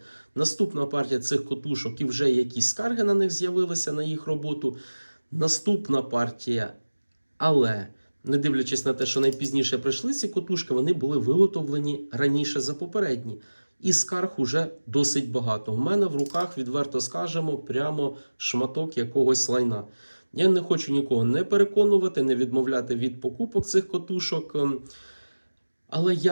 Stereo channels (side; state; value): both; inverted; correlation -1.00